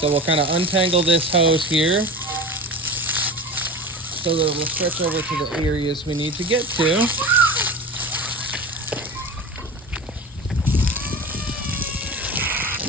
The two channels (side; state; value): both; normal; correlation 0.33